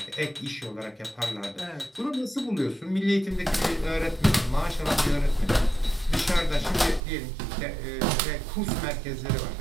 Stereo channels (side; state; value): left; drops out; at 7.0 s